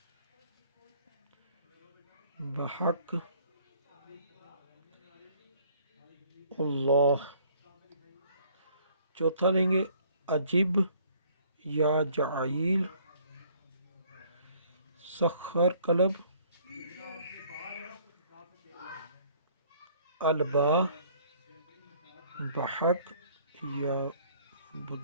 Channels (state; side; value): inverted; both; correlation -0.59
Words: بحق اللہ. چوتھا لیں گے عجیب یا جعیل سخر قلب. البا بحق یا